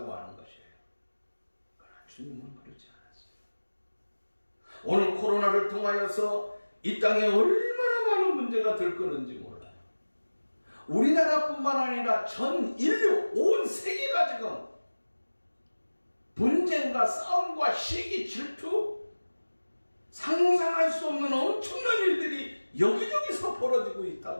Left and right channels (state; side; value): inverted; both; correlation -1.00